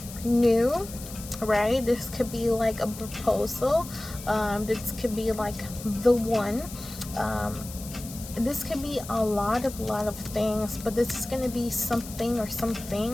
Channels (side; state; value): left; noise; hiss, 14 dB below the sound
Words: new, right? This could be like a proposal. This could be like the one. This could be a lot of things, but this is going to be something or some